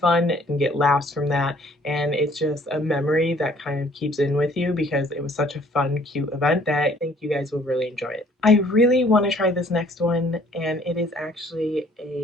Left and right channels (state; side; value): normal; both; correlation 0.59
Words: and get laughs from that. And it's just a memory that kind of keeps in with you because it was such a fun, cute event that I think you guys will really enjoy it. I really want to try this next one, and it is actually